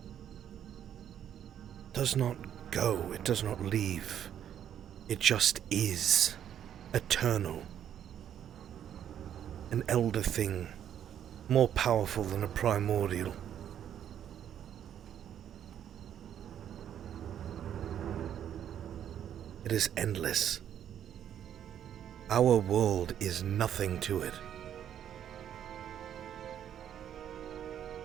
does not go, it does not leave. It just is eternal. An elder thing, more powerful than a primordial. It is endless. Our world is nothing to it.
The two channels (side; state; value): left; quieter; 9.8 dB